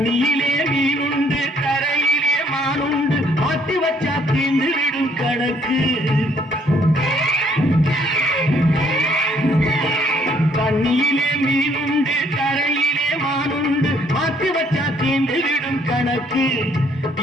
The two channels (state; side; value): normal; both; correlation 0.65